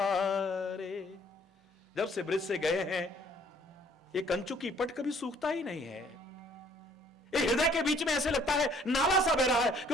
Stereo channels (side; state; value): both; normal; correlation 0.60